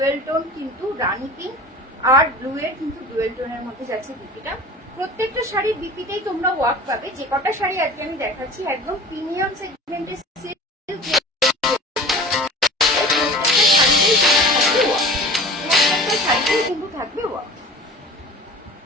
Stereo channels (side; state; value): both; normal; correlation 0.40